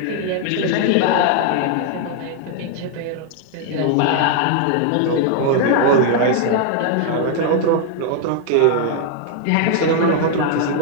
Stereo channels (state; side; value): different; both; correlation 0.00